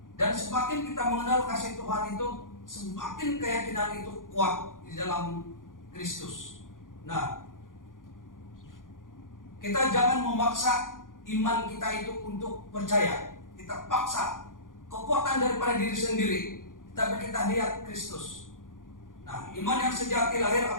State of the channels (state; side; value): late; right; 0.89 ms